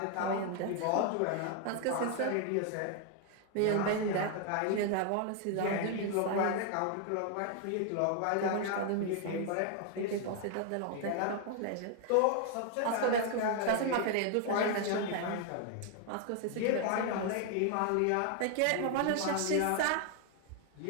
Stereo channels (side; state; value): both; different; correlation 0.00